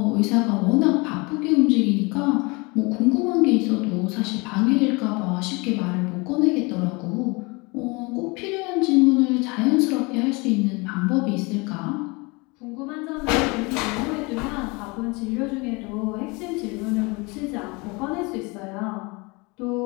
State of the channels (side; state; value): right; quieter; 27.2 dB